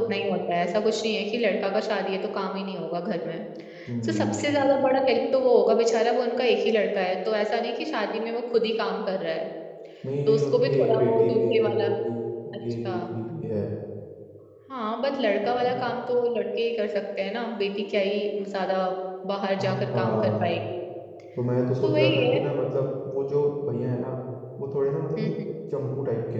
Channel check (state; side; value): identical; both; correlation 1.00